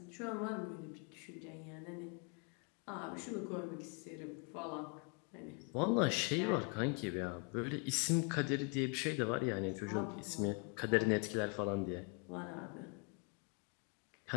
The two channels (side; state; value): right; quieter; 36.0 dB